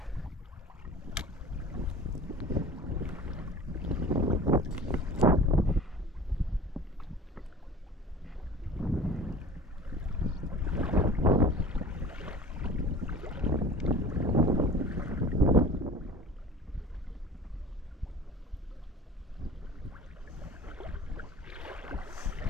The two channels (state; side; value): normal; both; correlation 0.41